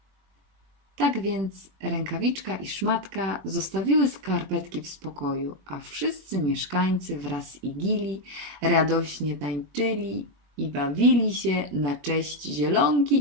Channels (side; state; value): left; late; 21 ms